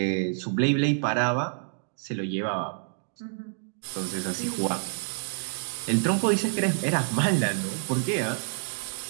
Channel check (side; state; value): left; silent; digital silence